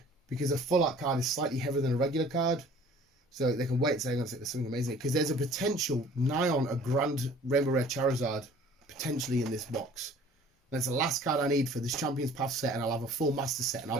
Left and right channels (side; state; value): both; normal; correlation 0.50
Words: because a full art card is slightly heavier than a regular card. So they can weigh it saying there's something amazing. Because there's a potential nigh on a Grand Rainbow Rare Charizard potentially in this box. That's the last card I need for this Champions Path set, and I'll have a full Master set, and I'll